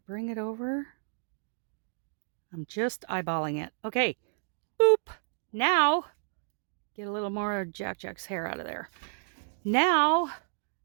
bring it over. I'm just eyeballing it. Okay. Boop. Now, get a little more Jack's hair out of there. Now,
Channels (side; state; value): left; silent; digital silence